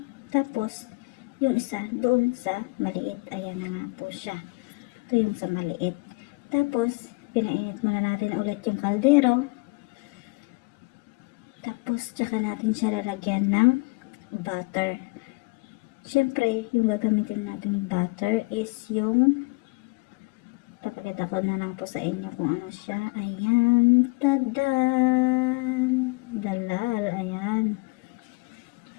Tapos, yung isa doon sa maliit. Ayan na nga po siya. Ito yung sa maliit. Tapos, pinainit muna natin ulit yung kaldero. Tapos, tsaka natin siya lalagyan ng butter. Siyempre, yung gagamitin natin butter is yung, papakita ko na lang po sa inyo kung ano siya. Ayan, tadan! Dalal, ayan.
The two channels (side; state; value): right; quieter; 27.6 dB